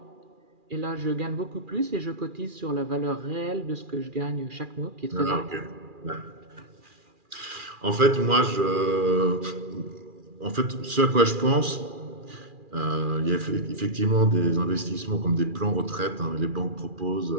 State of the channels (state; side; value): late; left; 2.4 ms